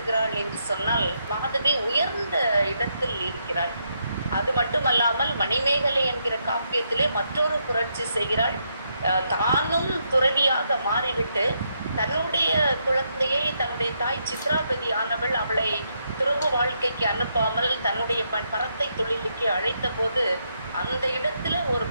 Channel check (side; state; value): both; inverted; correlation -0.78